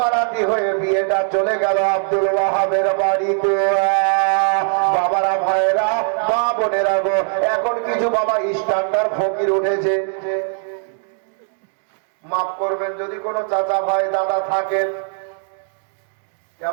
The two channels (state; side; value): silent; left; 58 dB below the other